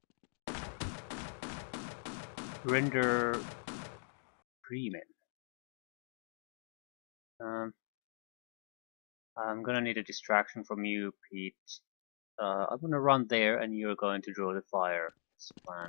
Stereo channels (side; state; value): right; silent; digital silence